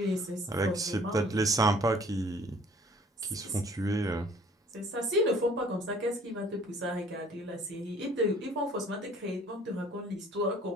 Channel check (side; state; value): both; normal; correlation 0.54